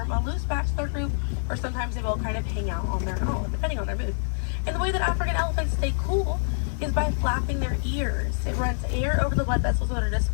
a loose bachelor group, or sometimes they will kind of hang out on their own, depending on their mood. And the way that African elephants stay cool is by flapping their ears. It runs air over the blood vessels that are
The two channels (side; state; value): right; silent; 58 dB below the other